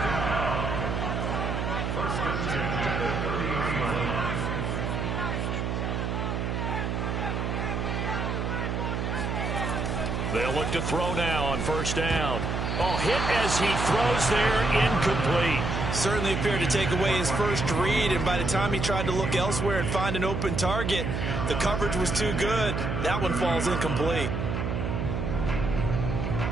They'll look to throw now on 1st down. Oh, hit as he throws there, incomplete. Certainly appeared to take away his first read, and by the time he tried to look elsewhere and find an open target, the coverage was too good. That one falls incomplete.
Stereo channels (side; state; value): right; noise; hum, 1 dB below the sound